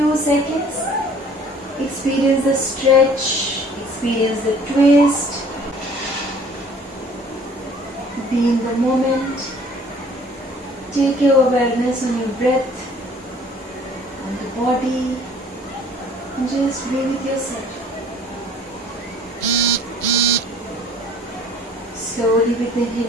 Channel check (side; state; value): both; normal; correlation 0.52